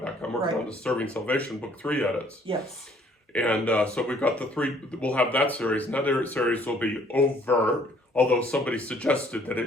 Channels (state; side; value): normal; both; correlation 0.61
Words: I'm working on the Serving Salvation Book 3 edits. Yes. And so we've got the 3, we'll have that series. Another series will be over, although somebody suggested that